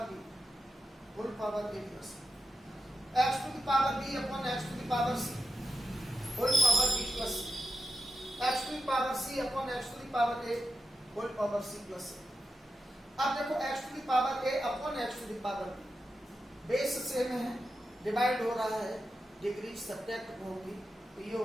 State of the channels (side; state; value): both; normal; correlation 0.88